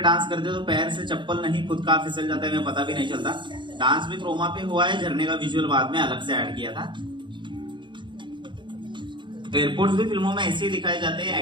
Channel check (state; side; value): late; left; 0.23 ms